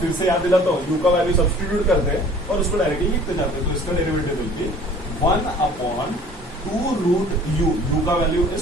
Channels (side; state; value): both; normal; correlation 0.50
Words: फिर से याद दिलाता हूँ, यू का वैल्यू सब्स्टिट्यूट करते हैं और उसको डायरेक्टली लिखते जाते हैं। तो इसका derivative will be 1/2 root u का value